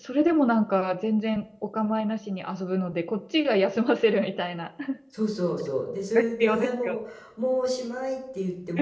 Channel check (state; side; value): identical; both; correlation 1.00